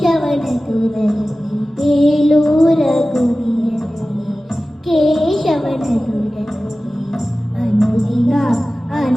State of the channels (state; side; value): normal; both; correlation 0.96